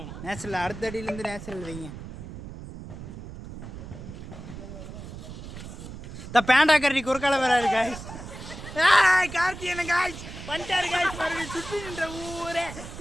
நேச்சுரல் அடுத்த அடியிலேருந்து நேச்சுரல் வைங்க. இந்த பேண்டா கரடி குறுக்கால வராரு காய்ஸ். கார்த்தியன் காய்ஸ் வந்துட்டாரு காய்ஸ். மறுபடியும் சுற்றி நின்ற ஊரே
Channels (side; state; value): right; noise; rumble, 11 dB below the sound